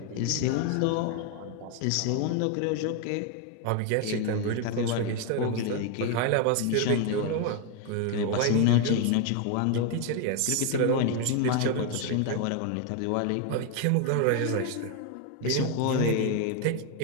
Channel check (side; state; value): both; different; correlation 0.01